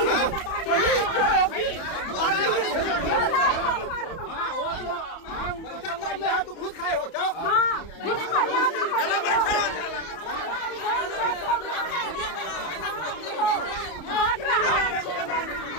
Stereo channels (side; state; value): right; late; 31 ms